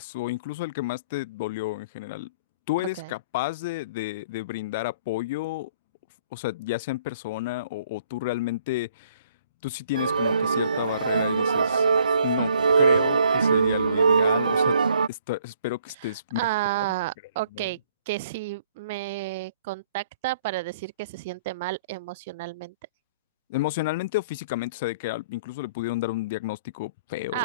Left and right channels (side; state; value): both; inverted; correlation -0.60